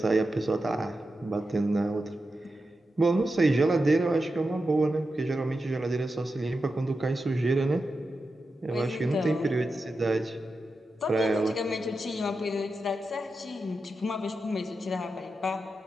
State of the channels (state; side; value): normal; both; correlation 0.90